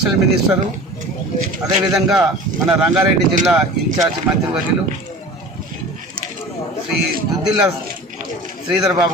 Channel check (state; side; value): normal; both; correlation 0.38